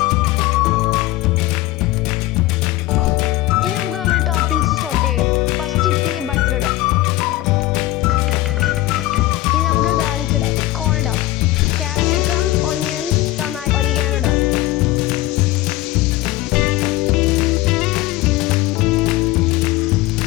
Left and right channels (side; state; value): right; quieter; 17.0 dB